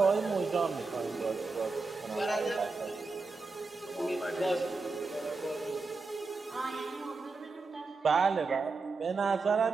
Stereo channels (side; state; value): left; quieter; 4.1 dB